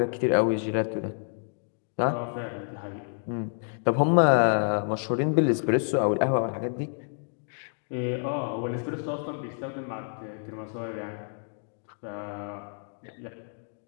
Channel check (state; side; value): silent; right; digital silence